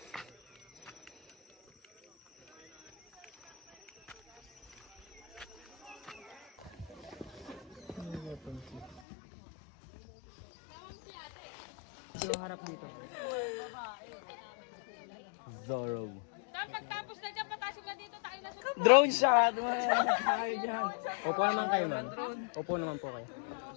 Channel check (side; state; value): right; drops out; at 9.0 s